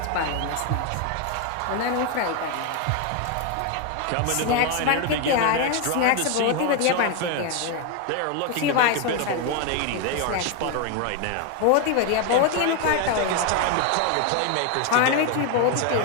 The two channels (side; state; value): both; different; correlation 0.01